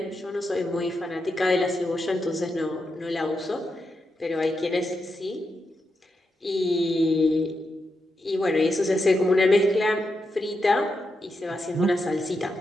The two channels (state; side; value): normal; both; correlation 0.85